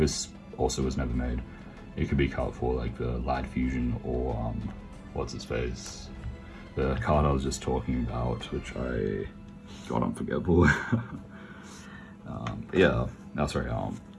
also was never made. It could be cut for like the Lad Fusion or what's his face? The card I was just talking about, which I got unforgettable. Yeah, no sorry,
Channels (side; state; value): both; identical; correlation 1.00